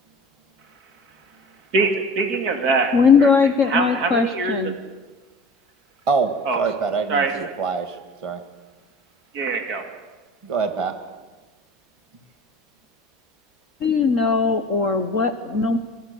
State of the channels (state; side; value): normal; both; correlation 0.42